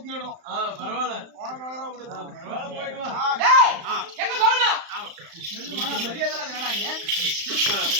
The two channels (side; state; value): left; late; 35 ms